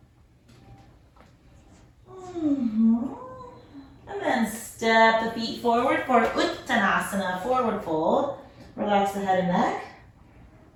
And then step the feet forward for Uttanasana, forward fold. Relax the head and neck.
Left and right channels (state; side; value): identical; both; correlation 1.00